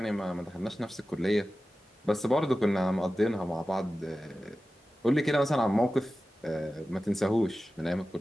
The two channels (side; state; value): both; normal; correlation 0.95